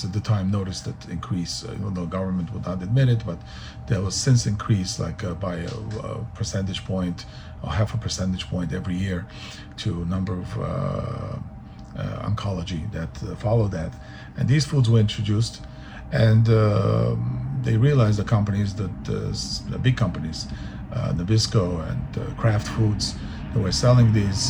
at the time noticed that increase, even though government would not admit it, but there was since increase by a percentage point or half a percentage point every year to a number of oncology that followed that. And these foods were introduced, and they realized, the companies, the big companies, Nabisco and Kraft Foods, they were selling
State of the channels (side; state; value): both; identical; correlation 1.00